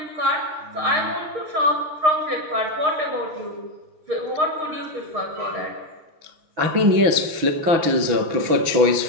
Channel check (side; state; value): left; late; 6.1 ms